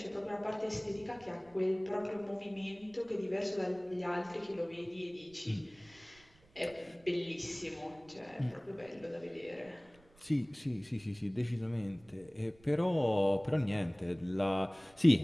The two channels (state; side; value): noise; right; rumble, 28 dB below the sound